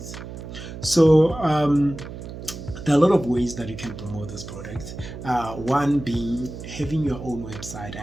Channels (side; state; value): right; noise; hum, 11 dB below the sound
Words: So there are a lot of ways that you can promote this product. One being having your own website.